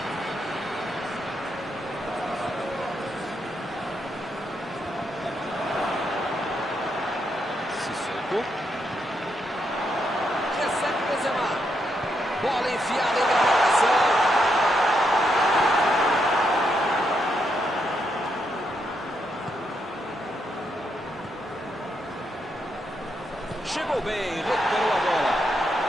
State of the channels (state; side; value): normal; both; correlation 0.80